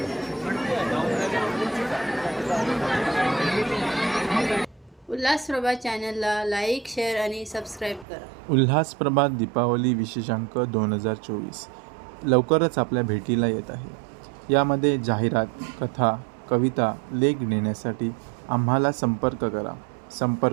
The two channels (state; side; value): drops out; left; at 8.1 s